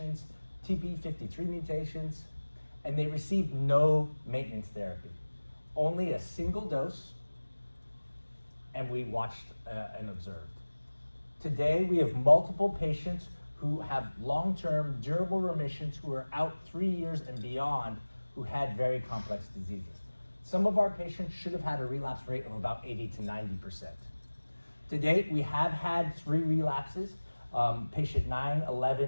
TP53 mutations, and they received no maintenance therapy. Only a single dose, and we watched and observed. Today, we have multiple patients who have long-term durable remissions who are out 3 years and beyond who had very complex diseases. Some of our patients should have had a relapse rate of about 80 to 90%. To date, we have had 3 relapses, patient 9,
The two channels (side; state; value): both; inverted; correlation -1.00